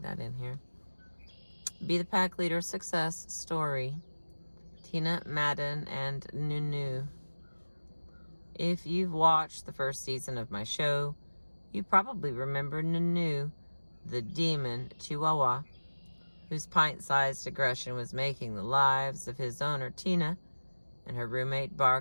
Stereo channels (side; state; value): both; inverted; correlation -1.00